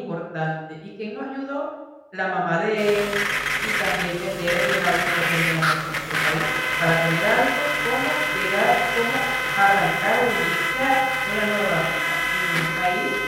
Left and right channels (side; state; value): both; identical; correlation 1.00